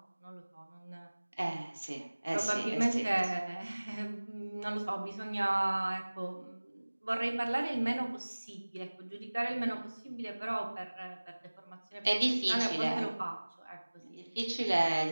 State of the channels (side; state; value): both; inverted; correlation -1.00